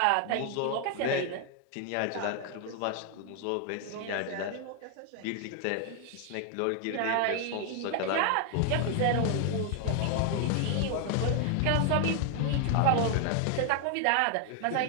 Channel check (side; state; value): both; different; correlation 0.00